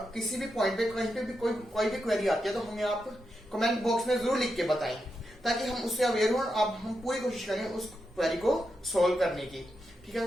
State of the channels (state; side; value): normal; both; correlation 0.86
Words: किसी भी पॉइंट पे कहीं पे भी कोई भी क्वेरी आती है तो हमें आप कमेंट बॉक्स में जरूर लिख के बताएं, ताकि हम उससे अवेयर हो। अब हम पूरी कोशिश करें उस क्वेरी को सॉल्व करने की, ठीक है।